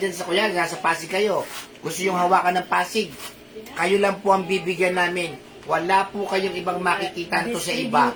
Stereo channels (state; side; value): identical; both; correlation 1.00